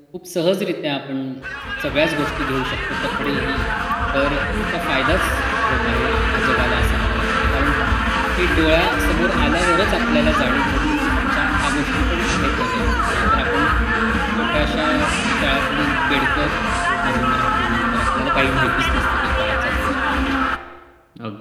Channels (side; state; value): both; identical; correlation 1.00